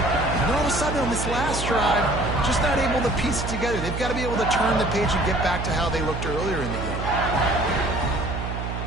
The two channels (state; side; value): noise; right; hum, 4 dB below the sound